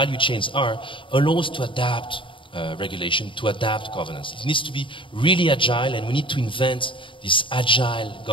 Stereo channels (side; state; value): right; late; 0.25 ms